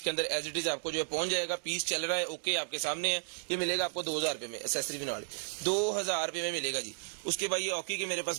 अंदर एज इट इज आपको जो है पहुंच जाएगा। पीस चल रहा है ओके, आपके सामने है। ये मिलेगा आपको 2000 रुपये में, एसेसरी भी नाल 2000 रुपये में मिलेगा जी। उसके बाद ये ऑकी के मेरे पास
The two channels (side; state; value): left; silent; 55 dB below the other